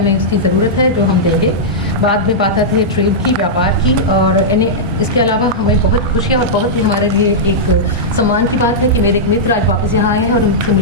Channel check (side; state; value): both; normal; correlation -0.10